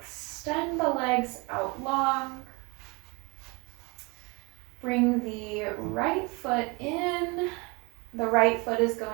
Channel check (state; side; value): quieter; left; 28.0 dB